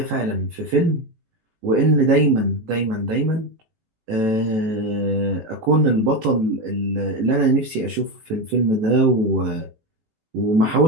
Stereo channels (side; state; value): left; late; 18 ms